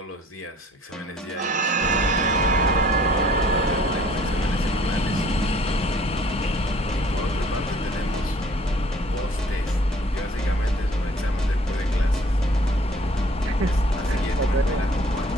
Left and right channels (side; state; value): both; normal; correlation 0.55